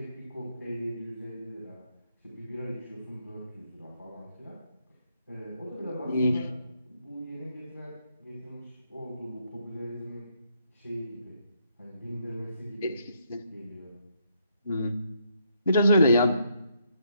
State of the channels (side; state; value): both; inverted; correlation -0.74